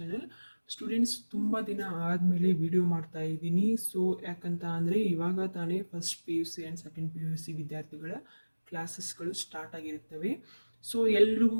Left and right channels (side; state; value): both; inverted; correlation -1.00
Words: Students, ತುಂಬ ದಿನ ಆದಮೇಲೆ ವಿಡಿಯೋ ಮಾಡ್ತಾ ಇದ್ದೀನಿ. ಸೊ ಯಾಕಂತ ಅಂದರೆ ಇವಾಗ ತಾನೇ first P U C and second P U C ವಿದ್ಯಾರ್ಥಿಗಳ ಕ್ಲಾಸಸ್ಗಳು ಸ್ಟಾರ್ಟ್ ಆಗಿರುತ್ತವೆ. ಸೊ